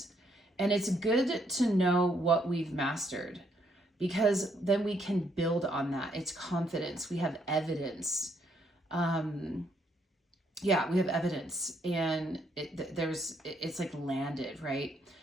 And it's good to know what we've mastered, because then we can build on that. It's confidence. We have evidence. We have evidence, and it's like landed, right?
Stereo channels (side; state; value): both; normal; correlation 0.72